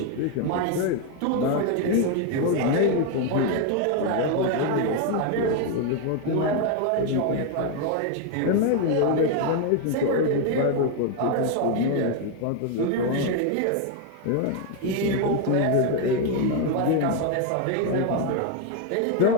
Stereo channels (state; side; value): different; both; correlation 0.01